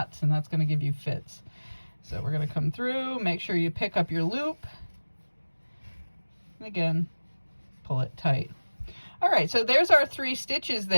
and that's going to give you fits. So we're going to come through, make sure you pick up your loop, and again, pull it tight. All right, so there's our 3 stitches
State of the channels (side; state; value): both; inverted; correlation -1.00